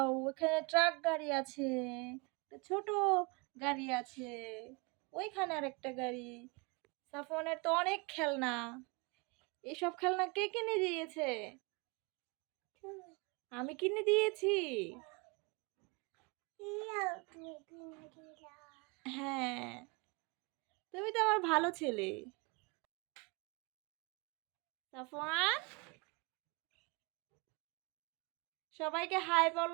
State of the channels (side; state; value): left; quieter; 29.5 dB